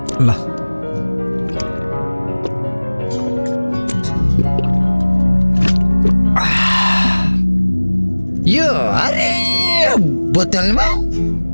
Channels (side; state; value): both; inverted; correlation -1.00